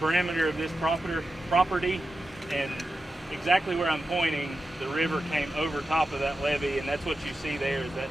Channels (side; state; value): both; normal; correlation 0.91